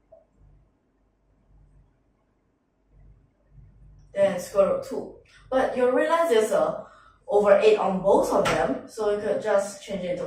Then square root 2. But you realize there's a over 8 on both of them, so you could just change it to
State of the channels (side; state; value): both; identical; correlation 1.00